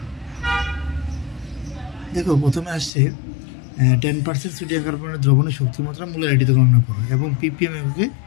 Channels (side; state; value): right; drops out; at 2.9 s